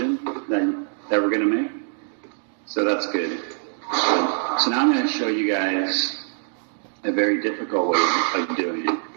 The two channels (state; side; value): silent; left; digital silence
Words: that we're going to make. So that's good. So now I'm going to show you guys a very difficult way of doing it,